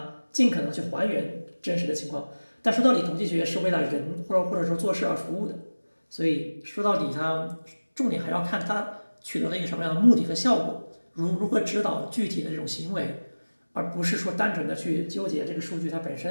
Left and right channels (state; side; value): inverted; both; correlation -1.00